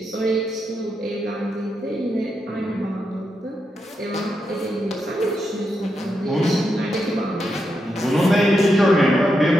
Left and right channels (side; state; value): both; normal; correlation 0.84